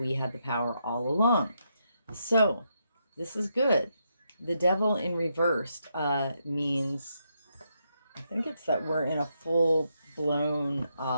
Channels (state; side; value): inverted; both; correlation -0.80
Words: had the power all along. So this is good. The devil in reversed means, I think it's that we're in a full blown